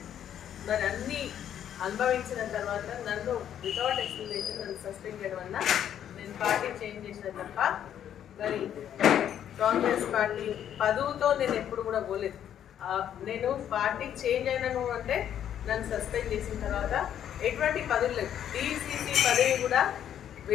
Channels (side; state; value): right; quieter; 10.0 dB